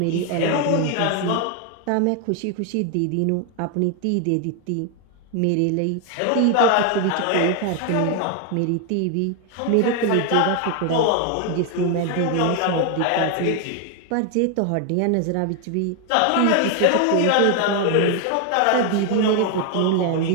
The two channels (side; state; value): both; different; correlation 0.01